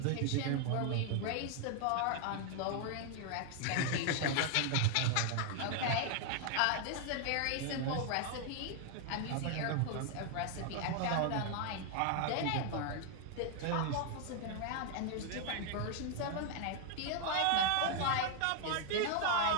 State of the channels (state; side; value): different; both; correlation 0.00